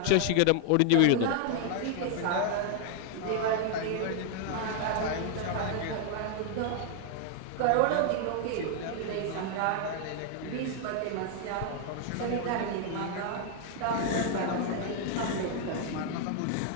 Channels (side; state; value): both; different; correlation 0.00